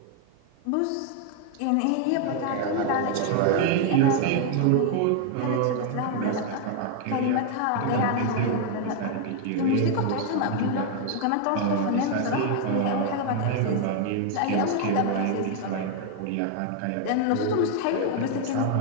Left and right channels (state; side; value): different; both; correlation 0.00